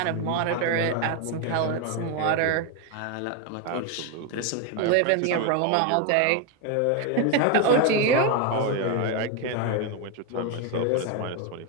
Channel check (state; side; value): different; both; correlation 0.02